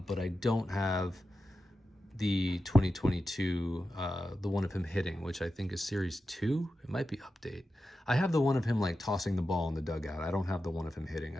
I don't have the 2022, the one of him hitting, which I think is Series 2. It might be update. I have the one of him like tossing the ball in the dugout. I don't have the one of him hitting.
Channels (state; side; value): normal; both; correlation 0.91